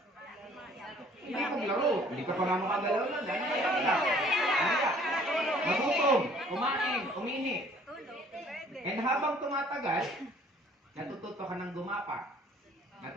hindi maglaro. Hindi ka pa nga makagalaw lang. Dahil ka lang. Magutom, kumain, umihi. And habang tumatagal, natututo ka ng gumapa.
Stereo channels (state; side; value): normal; both; correlation 0.56